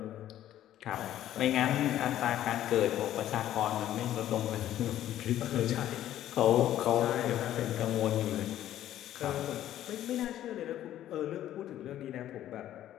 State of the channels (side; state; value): right; quieter; 12.4 dB